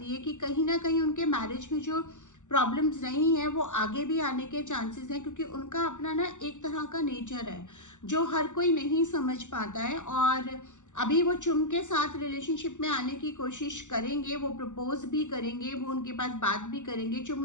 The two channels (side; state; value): right; late; 0.85 ms